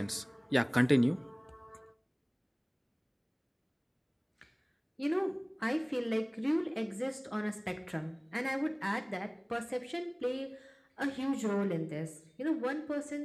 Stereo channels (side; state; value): both; identical; correlation 1.00